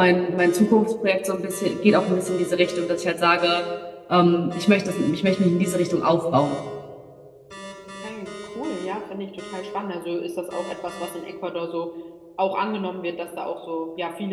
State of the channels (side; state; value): both; identical; correlation 1.00